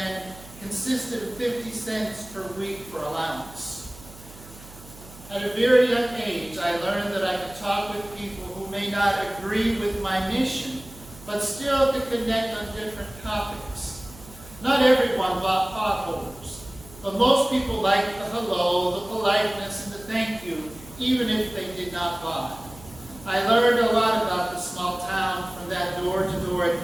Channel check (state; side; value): noise; right; hum, 19 dB below the sound